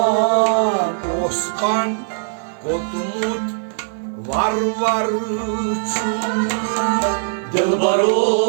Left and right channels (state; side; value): silent; left; 55 dB below the other